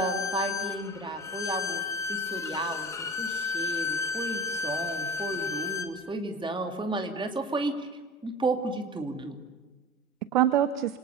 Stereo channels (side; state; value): both; normal; correlation 0.34